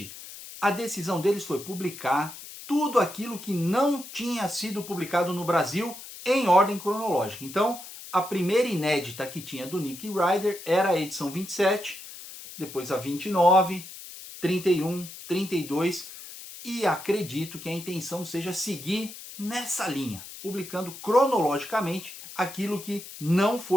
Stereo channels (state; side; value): noise; left; hiss, 14 dB below the sound